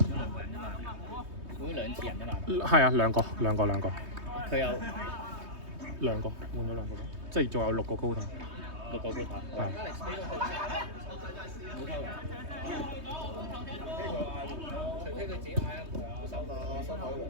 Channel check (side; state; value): left; late; 3.2 ms